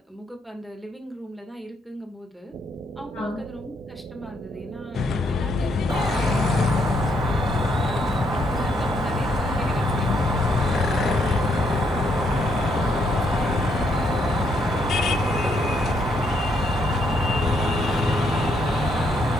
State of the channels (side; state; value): both; normal; correlation 0.74